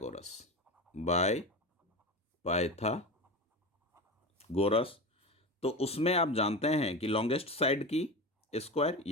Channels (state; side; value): normal; both; correlation 0.24